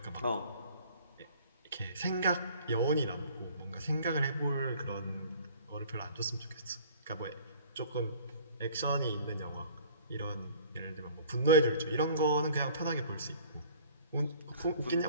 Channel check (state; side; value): inverted; both; correlation -0.50